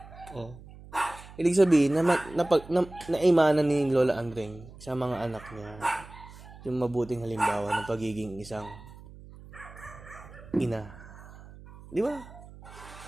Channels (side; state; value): right; noise; hum, 18 dB below the sound